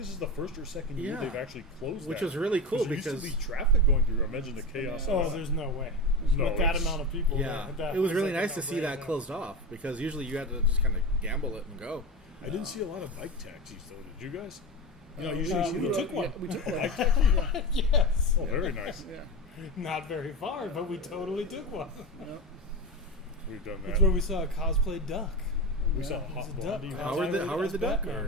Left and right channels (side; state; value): both; normal; correlation 0.21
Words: is the first or second year they've actually closed which that. was really cool because there used to be traffic going through. Imagine the chaos. Oh, there's no way. No, with that amount of people. Yeah, there, it was really nice to see that closed off because usually you had to just kind of gamble it and go. I didn't see a lot of bike taxis though. Did you guys? Usually we took one. Yeah, we took one. Bike taxi? Yes. Oh, very nice. Yeah. Not very far, but we totally took one. Yep. We've done that. That's where we saw a cosplay duck. We saw a hot It was a duck. blondie. Howard the duck?